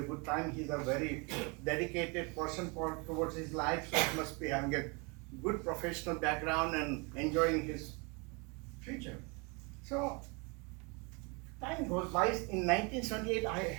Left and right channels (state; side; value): quieter; left; 29.6 dB